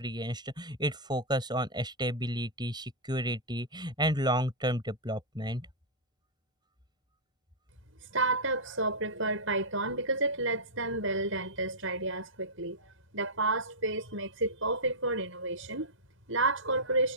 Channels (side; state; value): both; normal; correlation -0.10